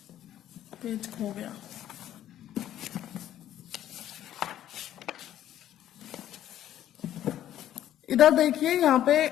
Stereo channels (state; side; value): quieter; right; 11.8 dB